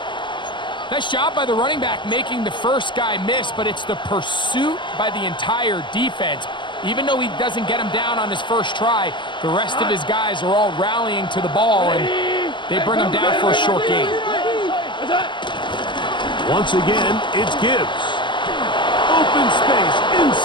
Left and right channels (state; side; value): late; right; 0.23 ms